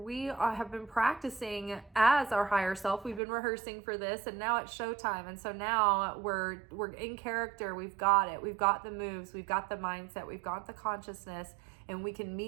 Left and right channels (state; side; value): drops out; left; at 3.2 s